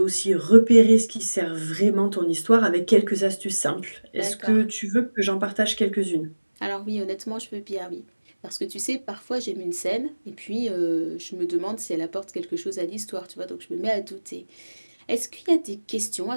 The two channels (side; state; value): both; inverted; correlation -1.00